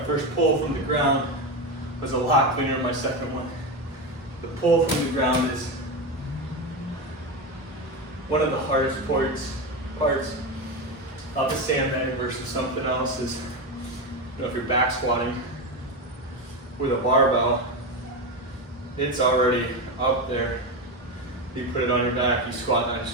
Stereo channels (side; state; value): both; normal; correlation 0.16